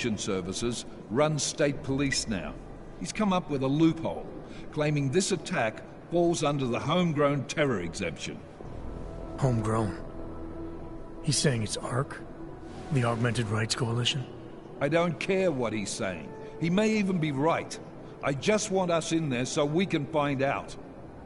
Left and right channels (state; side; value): identical; both; correlation 1.00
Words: services runs state police now. He's come up with a loophole, claiming this attack falls under the homegrown terror exemption. Homegrown? He's saying it's ARC? The Augmented Rights Coalition? I don't care what he's saying. He may even be right. I just want us in there so we can find out.